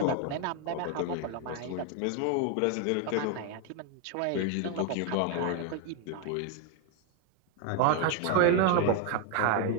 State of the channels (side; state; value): both; different; correlation 0.01